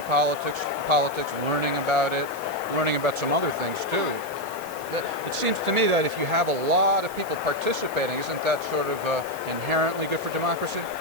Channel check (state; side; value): noise; right; hiss, 16 dB below the sound